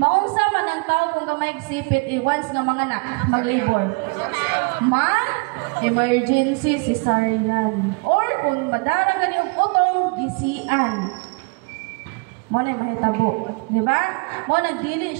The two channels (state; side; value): quieter; left; 31.8 dB